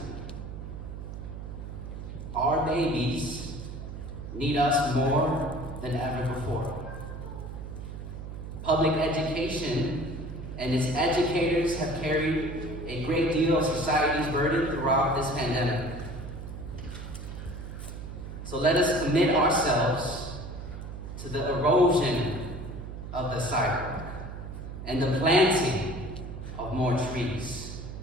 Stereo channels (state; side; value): noise; right; hum, 9 dB below the sound